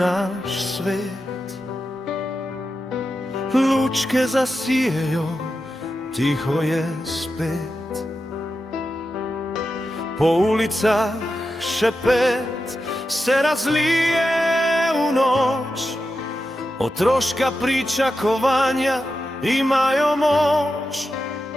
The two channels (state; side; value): normal; both; correlation 0.90